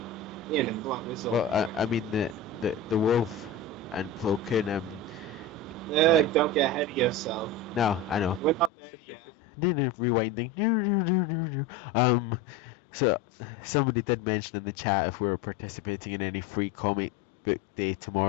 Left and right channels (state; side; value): drops out; right; at 8.7 s